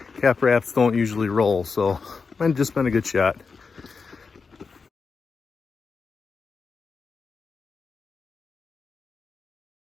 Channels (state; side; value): quieter; right; 4.9 dB